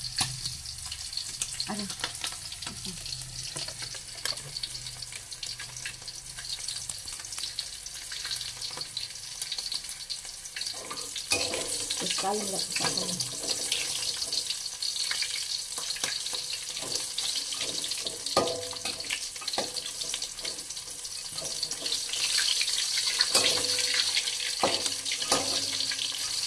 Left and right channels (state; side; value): identical; both; correlation 1.00